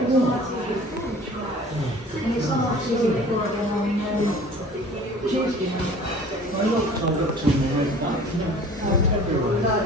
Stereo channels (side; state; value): both; normal; correlation 0.46